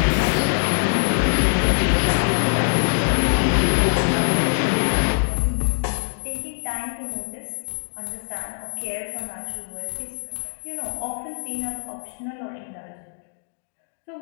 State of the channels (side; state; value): right; silent; digital silence